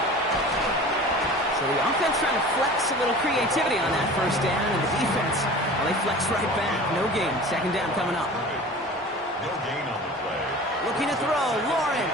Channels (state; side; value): normal; both; correlation 0.39